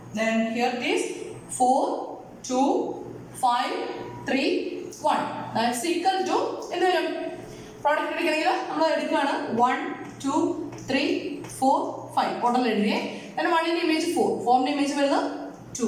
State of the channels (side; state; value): both; identical; correlation 1.00